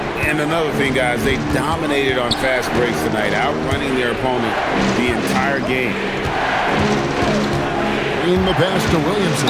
And another thing, guys, they dominated on fast breaks tonight, outrunning their opponent the entire game. In the pass to Williamson.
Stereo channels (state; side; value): identical; both; correlation 1.00